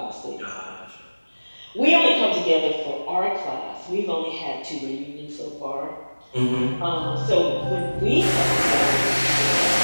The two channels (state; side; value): inverted; both; correlation -1.00